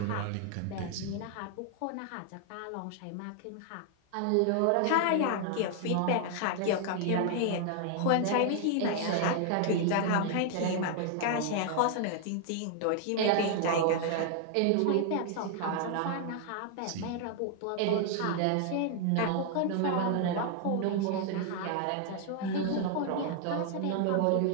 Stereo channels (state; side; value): different; both; correlation 0.00